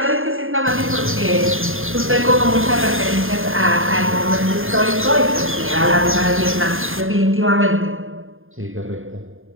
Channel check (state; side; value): late; left; 0.59 ms